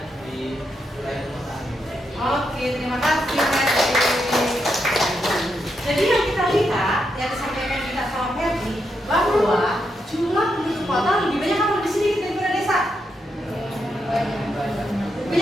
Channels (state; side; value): normal; both; correlation 0.82